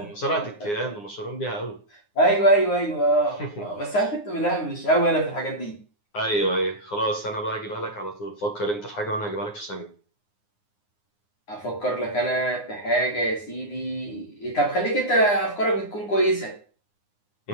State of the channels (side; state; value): right; late; 9.7 ms